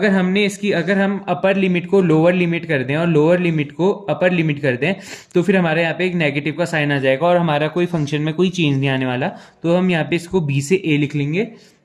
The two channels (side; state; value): both; identical; correlation 1.00